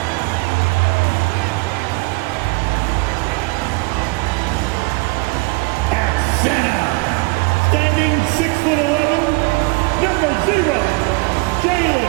At center, standing 6'11", number 0, Jalen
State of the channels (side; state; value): left; quieter; 27.2 dB